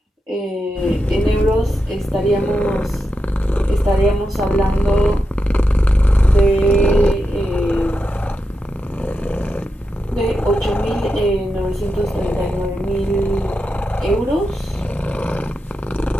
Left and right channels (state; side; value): normal; both; correlation 0.87